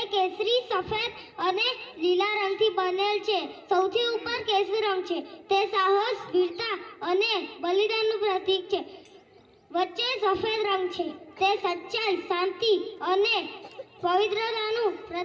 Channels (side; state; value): both; identical; correlation 1.00